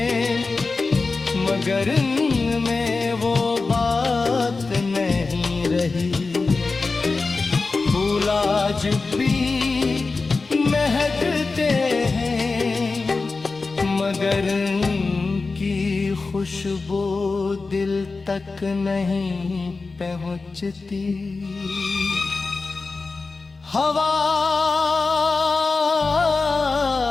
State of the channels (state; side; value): quieter; right; 4.0 dB